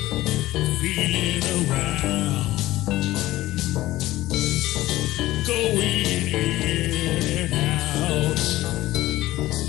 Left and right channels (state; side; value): quieter; right; 16.5 dB